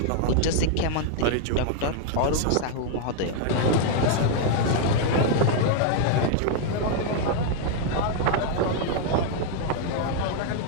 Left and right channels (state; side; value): different; both; correlation 0.00